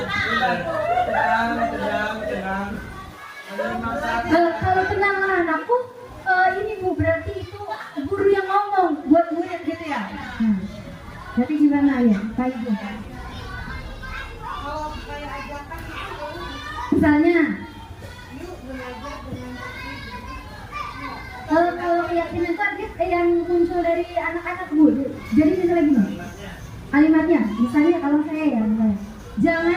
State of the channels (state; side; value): identical; both; correlation 1.00